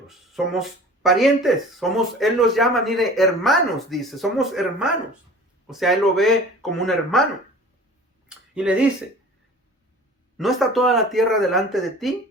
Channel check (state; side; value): normal; both; correlation 0.43